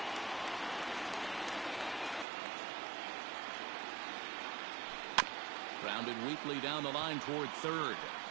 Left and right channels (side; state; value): left; drops out; at 2.2 s